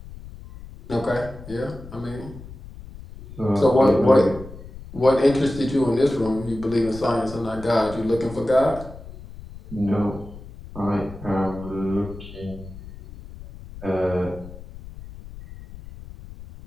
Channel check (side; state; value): left; noise; rumble, 15 dB below the sound